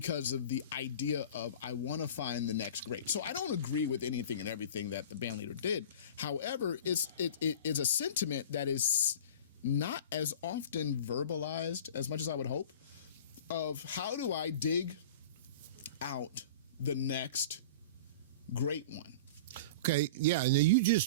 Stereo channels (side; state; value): both; inverted; correlation -0.38